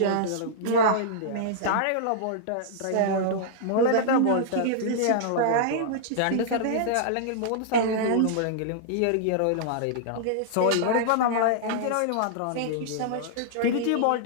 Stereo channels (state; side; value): different; both; correlation -0.02